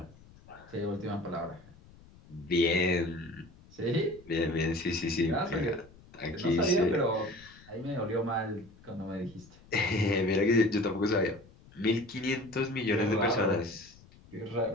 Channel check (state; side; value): noise; left; rumble, 24 dB below the sound